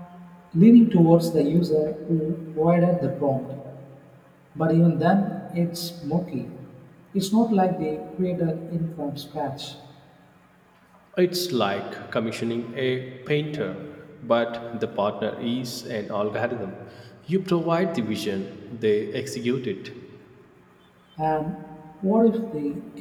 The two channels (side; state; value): both; identical; correlation 1.00